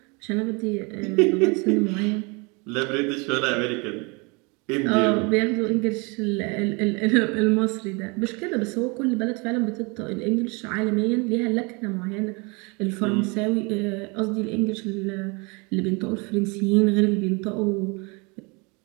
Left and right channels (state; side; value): quieter; left; 29.8 dB